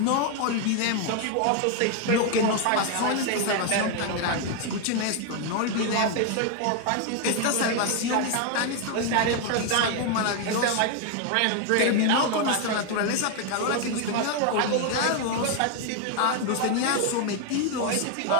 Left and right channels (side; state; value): both; different; correlation 0.01